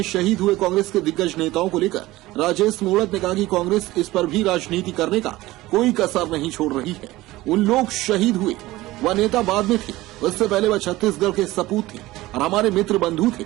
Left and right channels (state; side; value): quieter; left; 18.0 dB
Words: शहीद हुए कांग्रेस के दिग्गज नेताओं को लेकर राजेश मूणत ने कहा कि कांग्रेस इस पर भी राजनीति करने का कोई कसर नहीं छोड़ रही है। उन लोग शहीद हुए, वह नेता बाद में थे, उससे पहले वह छत्तीसगढ़ के सपूत थे और हमारे मित्र बंधु थे।